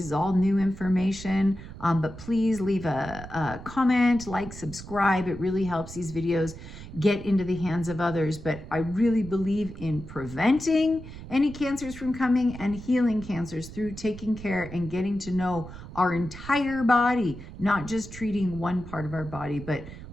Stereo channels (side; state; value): right; noise; rumble, 13 dB below the sound